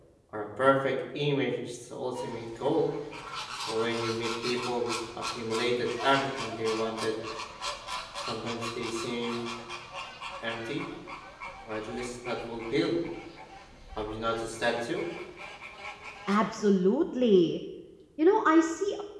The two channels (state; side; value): identical; both; correlation 1.00